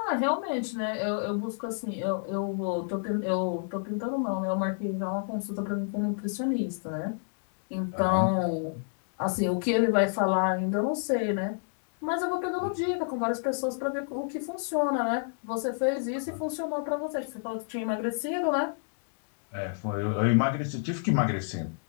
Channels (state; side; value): silent; right; digital silence